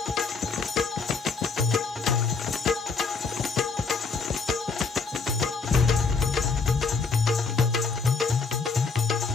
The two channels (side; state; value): right; quieter; 4.7 dB